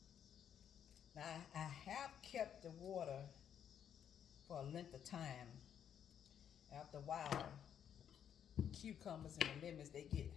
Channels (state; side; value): quieter; right; 8.9 dB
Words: Now I have kept the water for a length of time. After a while, cucumbers and the lemons, they get